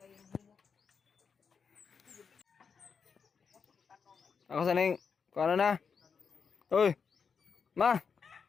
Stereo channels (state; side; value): quieter; right; 6.0 dB